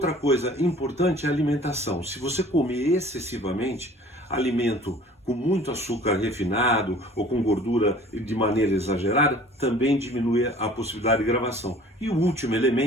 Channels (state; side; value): normal; both; correlation 0.49